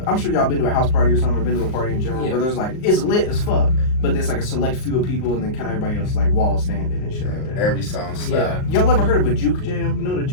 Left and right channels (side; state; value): right; late; 38 ms